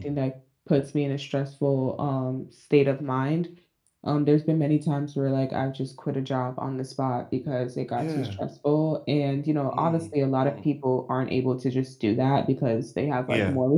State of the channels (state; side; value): identical; both; correlation 1.00